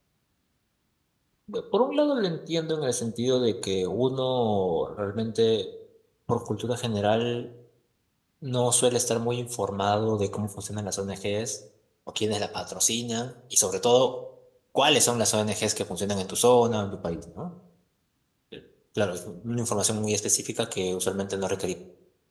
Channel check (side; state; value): both; identical; correlation 1.00